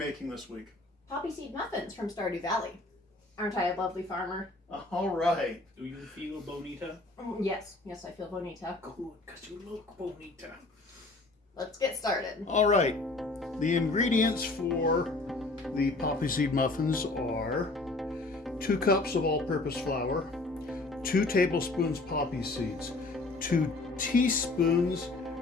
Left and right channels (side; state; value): right; quieter; 3.1 dB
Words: this week? Poppyseed Muffins from Stardew Valley. Aren't I a lovely farmer? All right. Do you feel bonita? Yes, I feel bonita. Good, because you look bonita. Let's get started. All right. The ingredients for the Poppyseed Muffins are 2 cups of all-purpose flour, 2 tablespoons poppy seeds, 2 teaspoons